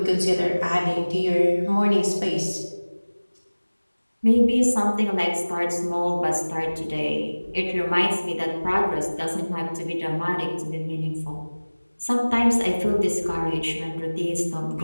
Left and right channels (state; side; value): inverted; both; correlation -1.00